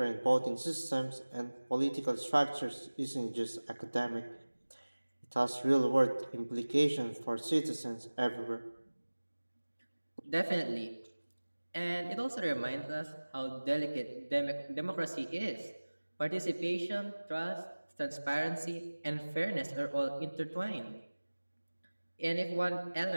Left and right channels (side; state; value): both; inverted; correlation -1.00